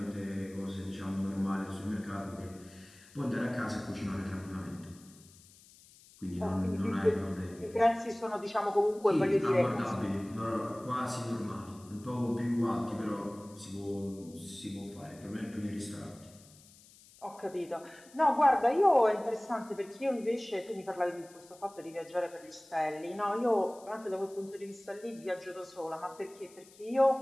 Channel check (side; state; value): left; noise; hiss, 24 dB below the sound